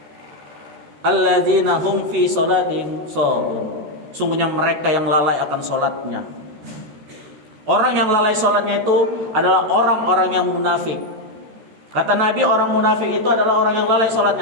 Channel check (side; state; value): left; late; 14 ms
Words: Alladzina hum fi sholatin sahun. Sungguhnya mereka yang lalai akan salatnya. Orang yang lalai salatnya itu adalah orang-orang yang munafik. Kata Nabi, orang munafik itu adalah orang yang lalai